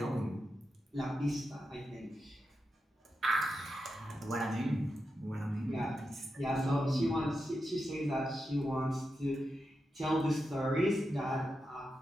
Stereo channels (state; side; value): normal; both; correlation 0.88